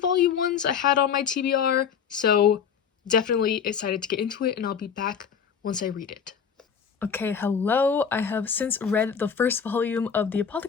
volume 1s I had on my TBR, so definitely excited to get into it, and I'll be back once I read it. Okay, hello. I have since read the first volume of the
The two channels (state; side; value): quieter; right; 7.2 dB